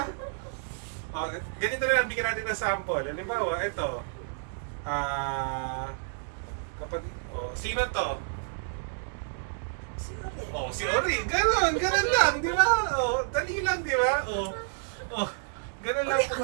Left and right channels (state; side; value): silent; left; digital silence